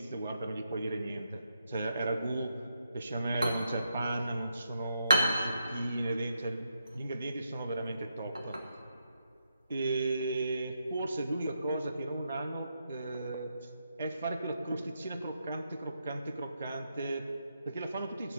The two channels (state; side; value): inverted; both; correlation -0.82